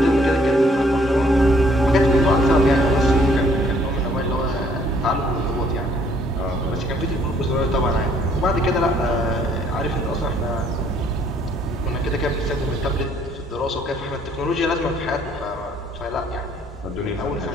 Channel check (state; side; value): normal; both; correlation 0.63